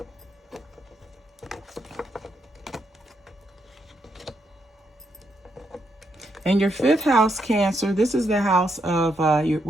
In your 5th house, Cancer, this is the house of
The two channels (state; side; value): normal; both; correlation 0.79